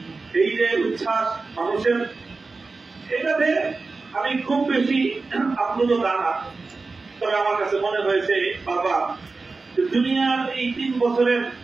এই যে উচ্ছ্বাস মানুষের, এটাতে আমি খুব বেশি আপ্লুত না, তবে আমার কাছে মনে হয়েছে বাবা দুনিয়ার এই 3 বছরের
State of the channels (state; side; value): quieter; left; 3.9 dB